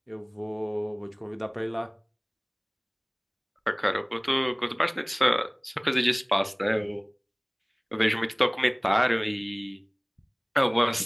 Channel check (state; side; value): identical; both; correlation 1.00